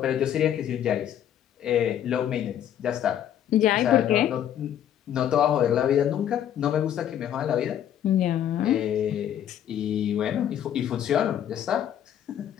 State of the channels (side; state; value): right; quieter; 10.4 dB